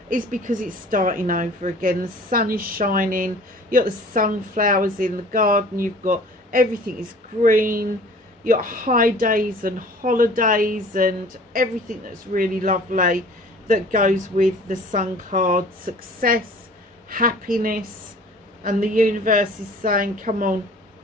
is because it's starting over again. The sun is shining. You've got the sunflowers in the garden. You've got everything is green. You've got high days and holidays and everything that's really lovely that goes with the sun card. Success, happiness, and the universe is saying, come on,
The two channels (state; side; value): normal; both; correlation 0.48